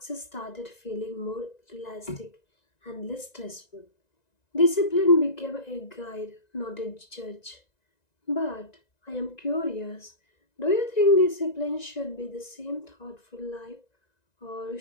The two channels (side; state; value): right; late; 1.9 ms